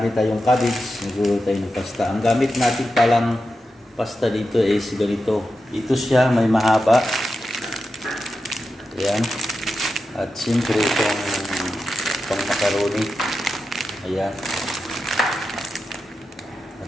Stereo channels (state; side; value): normal; both; correlation 0.90